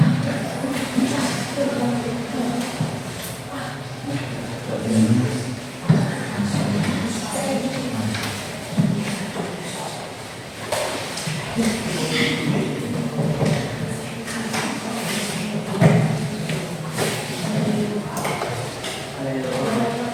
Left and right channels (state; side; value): identical; both; correlation 1.00